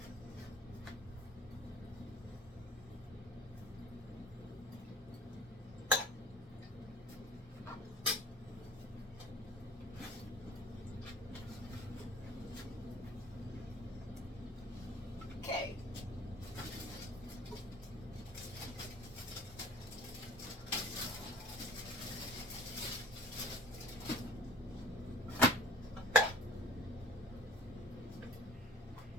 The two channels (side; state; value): both; normal; correlation 0.48